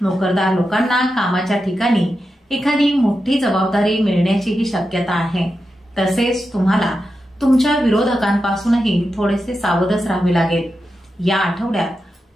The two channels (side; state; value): both; normal; correlation 0.89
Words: नोकरदार लोकांना कामाच्या ठिकाणी एखादी मोठी जबाबदारी मिळण्याचीही शक्यता आहे. तसेच तुम्हाला तुमच्या विरोधकांपासूनही थोडेसे सावधच राहावे लागेल. या आठवड्यात